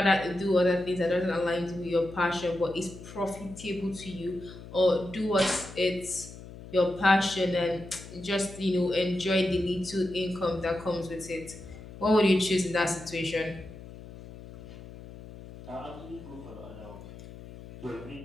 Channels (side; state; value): left; noise; hum, 15 dB below the sound